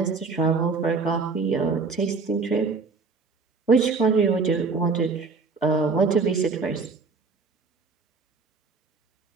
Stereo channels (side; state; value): left; quieter; 4.5 dB